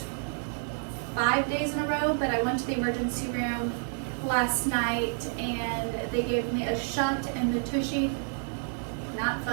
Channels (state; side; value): silent; left; 58 dB below the other